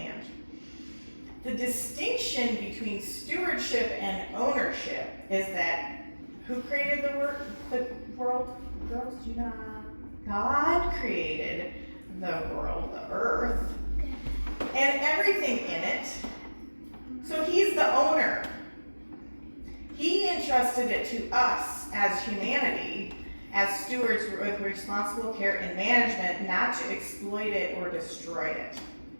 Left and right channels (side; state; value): both; inverted; correlation -1.00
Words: The distinction between stewardship and ownership is that who created the world? Girls, do you know? God created the world, the earth, and everything in it. So he's the owner. He entrusted it to us as humanity, as stewards with responsible care and management, not to exploit it or destroy it.